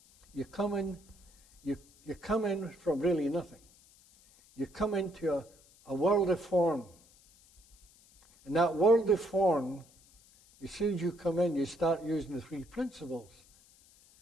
you come in from really nothing. You come into a world of form. And that world of form, as soon as you come in, you start using the three principles.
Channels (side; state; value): left; noise; hiss, 27 dB below the sound